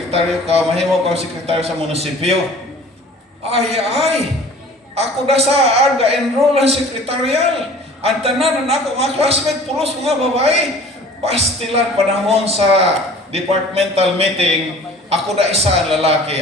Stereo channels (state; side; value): normal; both; correlation 0.46